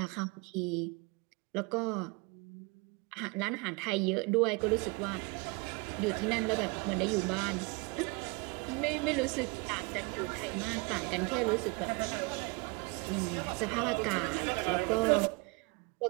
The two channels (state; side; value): quieter; left; 27.9 dB